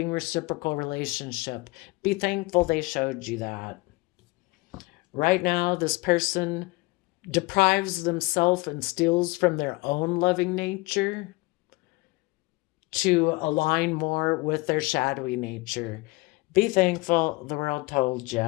reciprocal relationship. Be thankful they showed you that. Right now, this person deprives themselves and steals from their own loving nature to align more with their shadowy nature. Be thankful the world told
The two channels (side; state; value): right; quieter; 23.7 dB